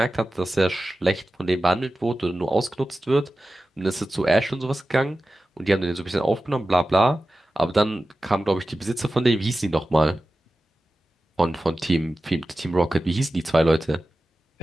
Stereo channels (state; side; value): normal; both; correlation 0.94